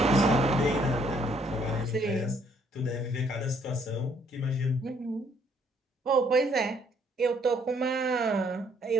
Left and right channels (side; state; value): both; normal; correlation 0.66